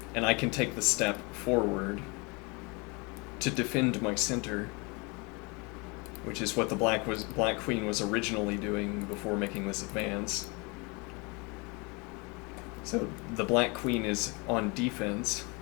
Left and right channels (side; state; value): right; quieter; 29.0 dB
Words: And I can take the step forward to defend my center, which is what the black queen was originally doing before making this advance. So the black queen is on defense,